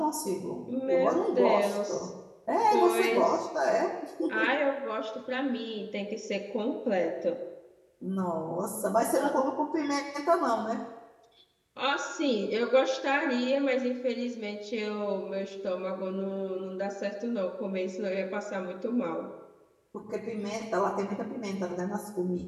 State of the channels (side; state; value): both; identical; correlation 1.00